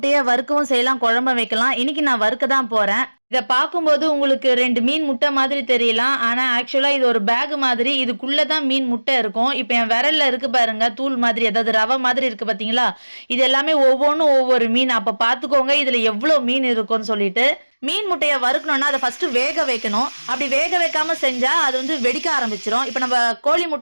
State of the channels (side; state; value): both; inverted; correlation -1.00